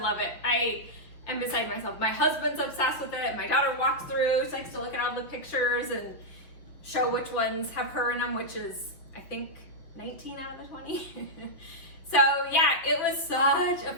it. I am beside myself. My husband's obsessed with it. My daughter walks through, she likes to look at all the pictures and show which ones have her in them, which is, I think, 19 out of the 20. So yeah, it was such a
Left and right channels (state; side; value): late; right; 5.8 ms